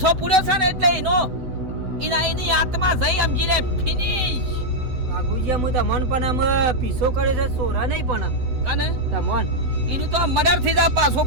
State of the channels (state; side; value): late; left; 8.0 ms